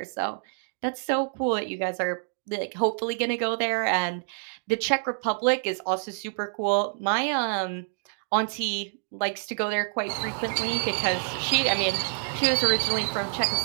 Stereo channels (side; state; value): left; silent; digital silence